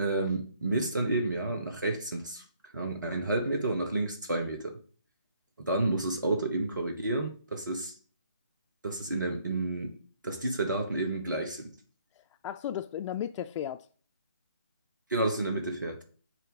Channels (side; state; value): both; inverted; correlation -0.63